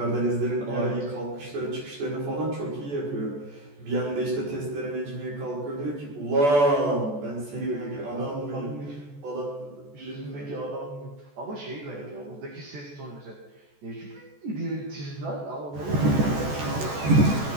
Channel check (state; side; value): late; left; 14 ms